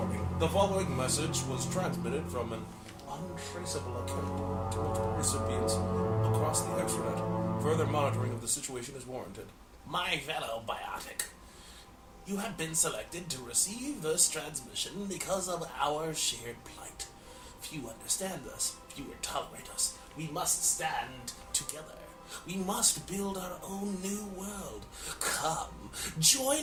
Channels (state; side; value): identical; both; correlation 1.00